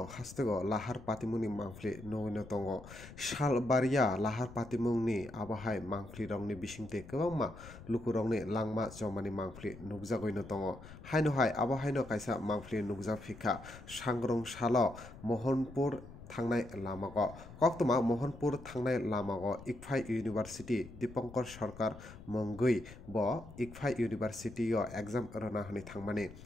hastego Lahar Patimwng mangfli no tongo Shal baria Lahar Patimwng ni abahai mangfli rongni bisingte kwbangma lukurongni langma jomani mangfli nugjagoi no tongo haino hai abahai no kaisa mangfli nugjak phika sangrong salo Mohanpur Thangnai lamago koktoma Mohanpur Thangnai lamago Icfai University Dipankar Sarkar Mongui bo Icfai University o exam rana hani thangmani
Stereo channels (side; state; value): left; noise; rumble, 16 dB below the sound